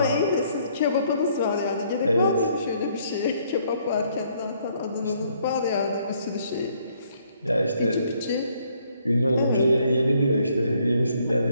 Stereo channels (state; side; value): inverted; both; correlation -0.67